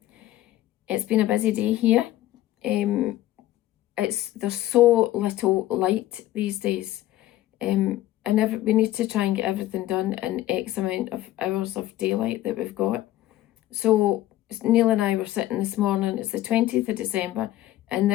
It's been a busy day here. There's so little light these days. And we need to try and get everything done in X amount of hours of daylight that we've got. So Neil and I were sitting this morning. It's the 20th of December and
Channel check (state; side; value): quieter; right; 14.6 dB